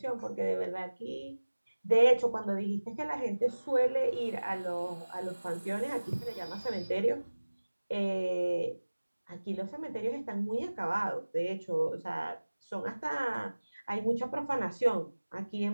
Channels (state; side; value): inverted; both; correlation -1.00